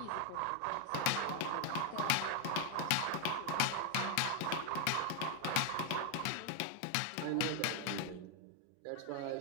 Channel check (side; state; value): both; different; correlation 0.00